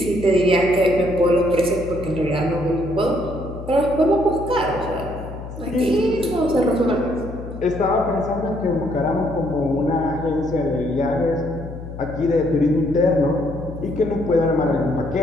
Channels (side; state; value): left; noise; hum, 11 dB below the sound